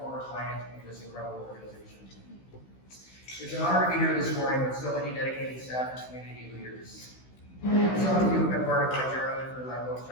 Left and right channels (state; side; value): late; right; 16 ms